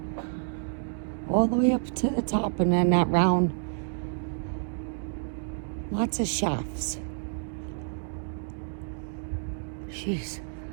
All the way up to the top, and then that round. Lots of shafts. Jeez.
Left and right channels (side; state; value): left; silent; digital silence